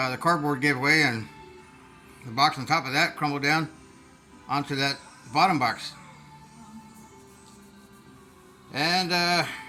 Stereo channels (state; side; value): identical; both; correlation 1.00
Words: cardboard gave away and the box on top of that crumbled down onto that bottom box. And